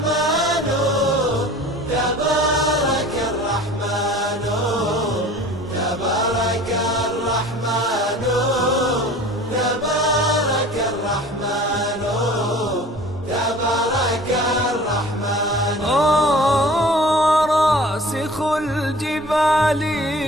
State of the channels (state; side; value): normal; both; correlation 0.44